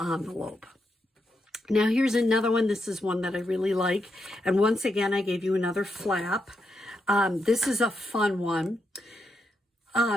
Now here's another one. This is one that I really like. And once again, I gave you another flap. This is a fun one.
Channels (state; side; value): normal; both; correlation 0.83